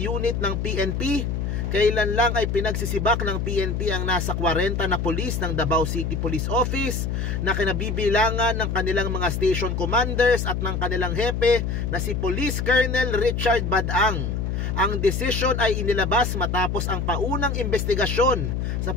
ng PNP. Kailan lang ay pinagsisibak ng PNP ang nasa 40 na pulis ng Davao City Police Office na kinabibilangan ng kanilang mga station commanders at ng kanilang hepe na si Police Colonel Richard Badang. Ang desisyon ay inilabas matapos ang paunang investigasyon sa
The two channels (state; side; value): noise; left; hum, 1 dB below the sound